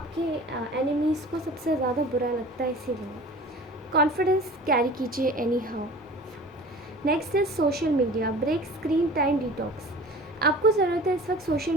एनिमीज़ को सबसे ज़्यादा बुरा लगता है, इसीलिए कॉन्फिडेंस कैरी कीजिए anyhow. Next is social media, break screen time detox. आपको ज़रूरत है इस वक्त सोशल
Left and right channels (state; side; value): normal; both; correlation 0.41